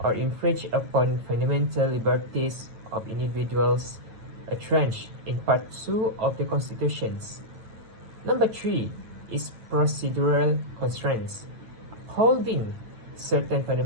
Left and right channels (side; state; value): left; late; 9.0 ms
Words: or infringe upon fundamental liberties of individuals entrenched in Part 2 of the Constitutions. Number 3 is procedural constraints. Holding certain